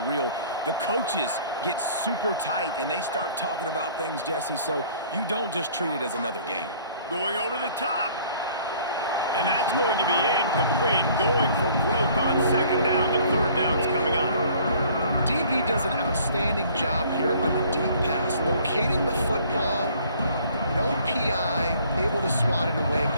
real. The coaches get super tight, and they start talking about things, Jesse, so you don't just treat it as another game. Going over the top. And that's going to be incomplete. Going for broke on 2nd down, but 3rd down's coming up. DB does an outstanding job here on the deep pass, locating the football, no PI, able to swat it away,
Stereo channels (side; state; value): both; inverted; correlation -0.55